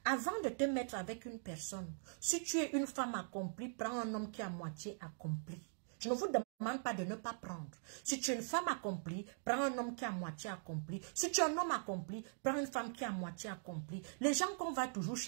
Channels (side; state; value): left; silent; digital silence